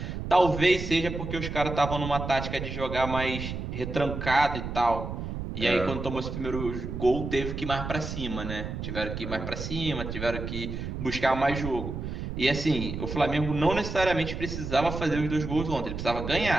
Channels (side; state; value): right; noise; rumble, 6 dB below the sound